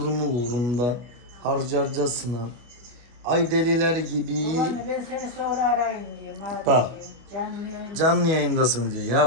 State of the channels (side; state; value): left; late; 25 ms